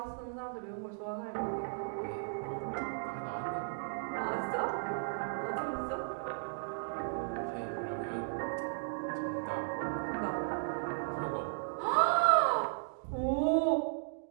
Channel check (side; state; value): left; silent; digital silence